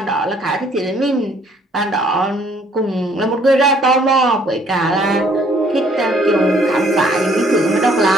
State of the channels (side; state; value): both; normal; correlation 0.62